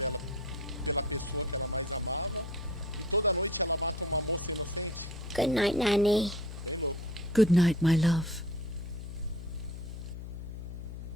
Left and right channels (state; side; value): noise; left; hum, 9 dB below the sound